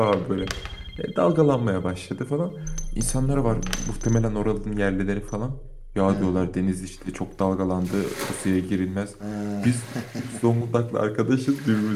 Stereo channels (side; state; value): both; identical; correlation 1.00